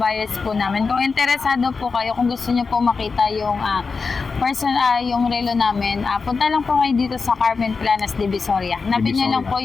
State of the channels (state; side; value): quieter; right; 4.7 dB